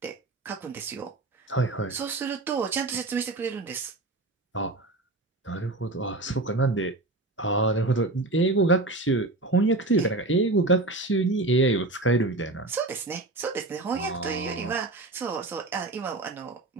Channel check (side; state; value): left; quieter; 3.0 dB